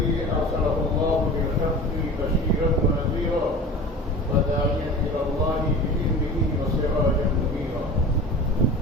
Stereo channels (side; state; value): both; normal; correlation 0.36